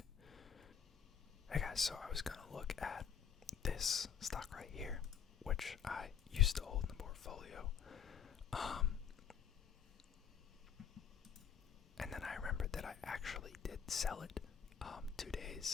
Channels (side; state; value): right; quieter; 7.8 dB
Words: Hey guys, so I was gonna look at this stock right here, which I used to hold in the portfolio. And then I remembered that I actually did sell it 2